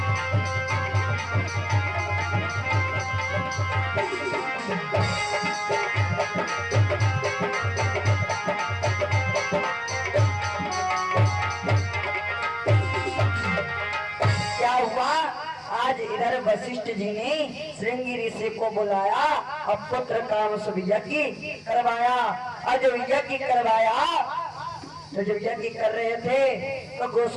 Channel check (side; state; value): both; identical; correlation 1.00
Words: आज इधर वशिष्ठ जी ने श्रृंगी ऋषि को बुलाया और पुत्र काम सब यज्ञ करवाया। और जब यज्ञ करवाया तो जब यज्ञ कर रहे थे तो